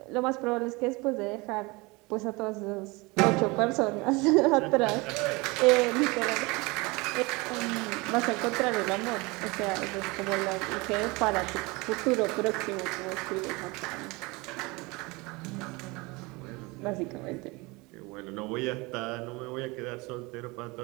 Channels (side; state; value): left; quieter; 24.9 dB